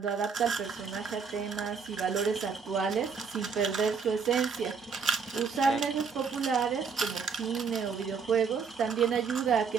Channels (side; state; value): left; quieter; 5.7 dB